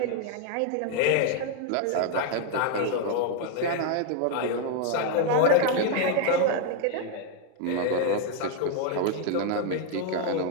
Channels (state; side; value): different; both; correlation 0.01